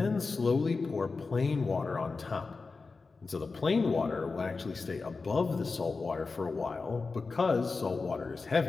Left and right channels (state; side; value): quieter; right; 4.2 dB